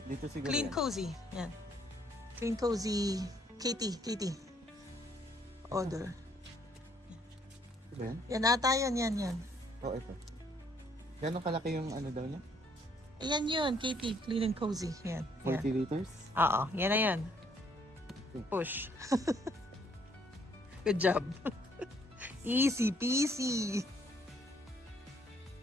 Dito siguro Clean yan. Cozy. Yan. Clean Cozy Katie. Order. Yan? Yan ata yun, yan. Oh, ito. Gano'ng kalaki yung daw niya? Ayan yun, Katie, Clean and Cozy. Yan. 40 liters? Oo, yan na yan. Push. Good job. Easy peasy.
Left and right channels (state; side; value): normal; both; correlation 0.66